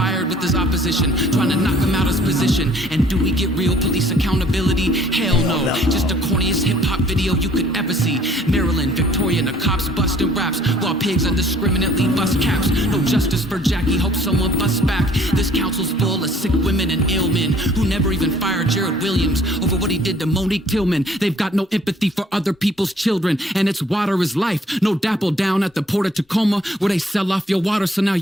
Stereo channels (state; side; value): normal; both; correlation 0.58